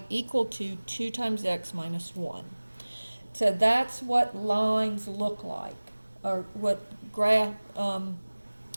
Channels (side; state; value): both; inverted; correlation -1.00